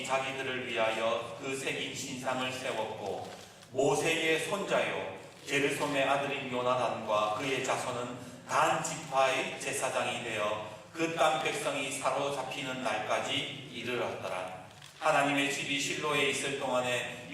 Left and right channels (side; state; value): both; identical; correlation 1.00